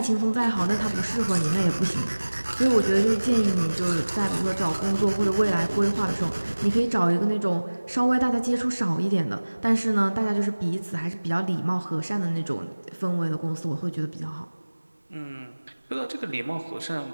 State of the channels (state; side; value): inverted; both; correlation -1.00